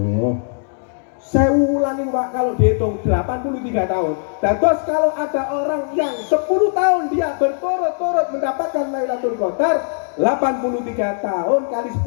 Saya ulangi, Pak, kalau dihitung 83 tahun. Terus kalau ada orang yang 10 tahun dia berturut-turut mendapatkan Lailatul Qadar, 83 tahun kali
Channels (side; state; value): right; silent; digital silence